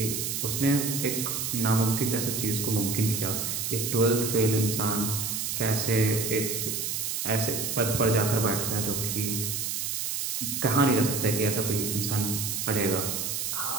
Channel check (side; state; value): right; noise; hiss, 2 dB below the sound